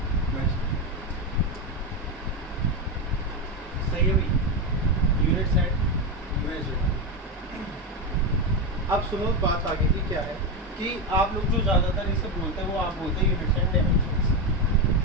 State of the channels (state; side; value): normal; both; correlation 0.12